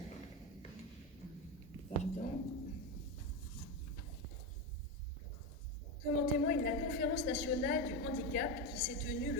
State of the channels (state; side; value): normal; both; correlation 0.13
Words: Comme en témoigne la Conférence nationale du handicap qui s'est tenue